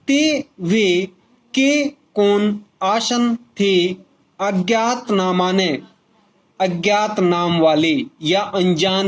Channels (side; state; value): both; identical; correlation 1.00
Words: ते वे के कौन आसन थे अज्ञात नामाने, अज्ञात नाम वाले या